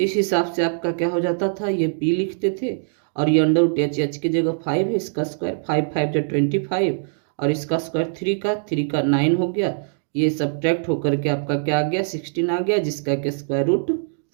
हिसाब से आपका क्या हो जाता था, ये P लिखते थे और ये √h की जगह 5 है, इसका स्क्वायर 5 5 25 और इसका स्क्वायर 3 का 9 हो गया। ये सब्ट्रैक्ट होकर के आपका क्या आ गया, 16 आ गया, जिसका के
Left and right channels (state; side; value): silent; left; digital silence